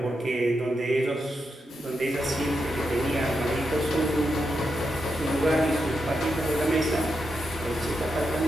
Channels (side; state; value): both; normal; correlation 0.85